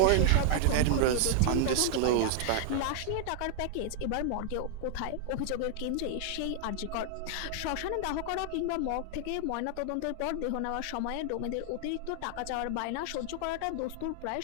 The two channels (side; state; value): both; different; correlation -0.01